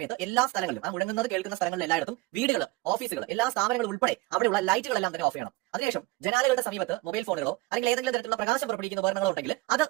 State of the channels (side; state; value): left; quieter; 20.3 dB